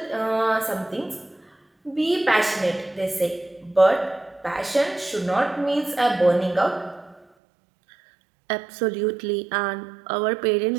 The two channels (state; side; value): drops out; left; at 7.2 s